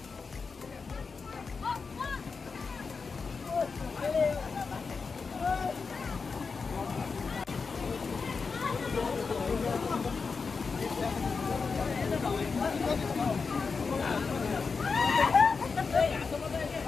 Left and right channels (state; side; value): quieter; right; 4.9 dB